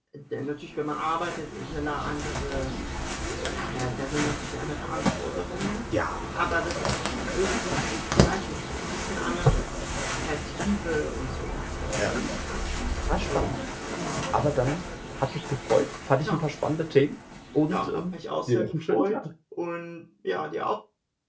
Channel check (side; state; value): both; identical; correlation 1.00